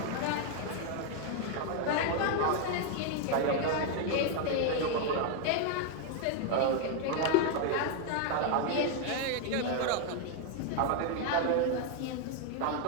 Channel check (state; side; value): different; both; correlation 0.00